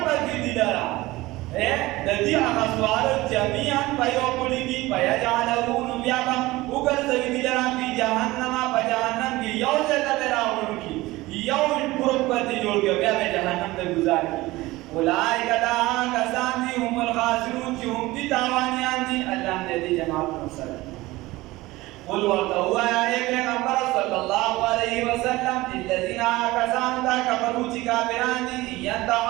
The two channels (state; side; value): quieter; left; 19.3 dB